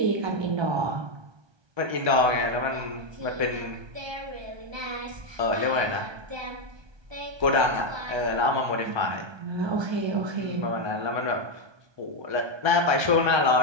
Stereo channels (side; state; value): left; late; 1.3 ms